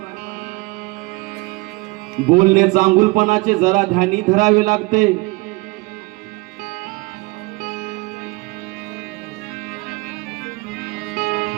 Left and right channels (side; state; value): left; quieter; 24.2 dB